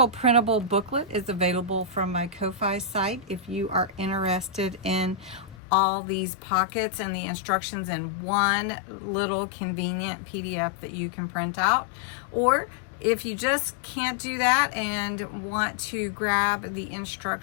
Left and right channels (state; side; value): drops out; right; at 5.6 s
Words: printable booklet is available from my Ko-Fi site if you are interested in all these pockets and the instructions in one little convenient PDF that you can print out. Or if you just can't do that and want to grab the